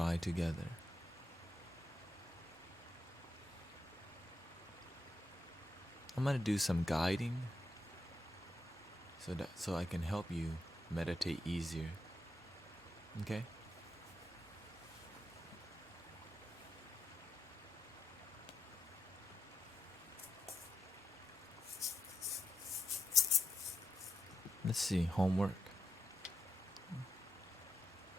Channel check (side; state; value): both; normal; correlation 0.82